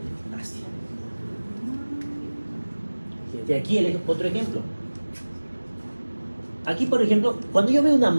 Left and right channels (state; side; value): inverted; both; correlation -1.00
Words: Fíjense aquí otro ejemplo. Aquí, por ejemplo, cuando yo veo una